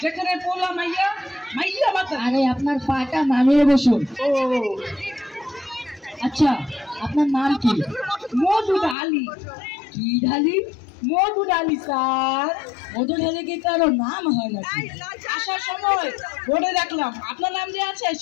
যেখানে পোলা মাইয়া মাইয়া বাতা আরে আপনার পাটা নামিয়ে বসুন ও আচ্ছা আপনার নাম কি মধুর আলী কি ঢালি মধুর আলী স্যার মধু ঢালি কি কারো নাম হয় নাকি আসার সময় বোর্ডে দেখলাম আপনার নাম যে আছে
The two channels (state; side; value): drops out; right; at 9.0 s